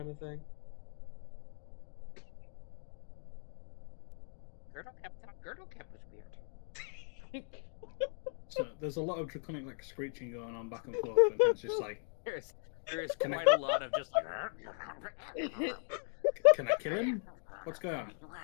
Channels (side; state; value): right; silent; 52 dB below the other